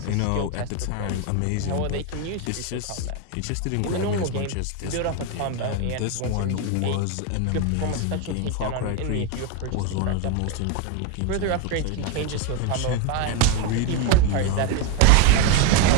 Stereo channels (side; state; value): both; different; correlation 0.03